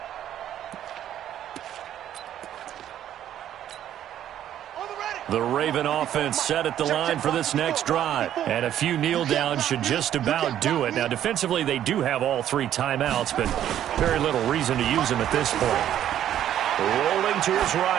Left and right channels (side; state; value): left; quieter; 11.1 dB